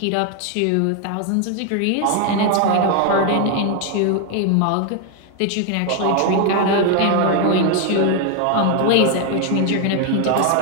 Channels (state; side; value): different; both; correlation 0.01